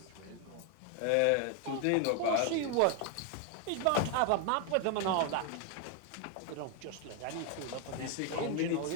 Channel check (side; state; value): both; different; correlation 0.01